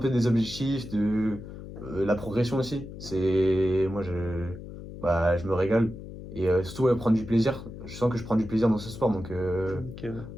des objectifs, la progression aussi. Je me régale. Et surtout, ouais, prendre du plaisir. Je sens que je prends du plaisir dans ce sport, donc Ok, ouais.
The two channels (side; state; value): left; noise; hum, 12 dB below the sound